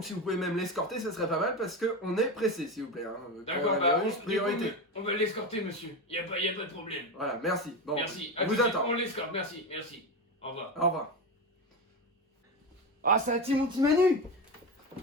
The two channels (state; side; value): normal; both; correlation 0.18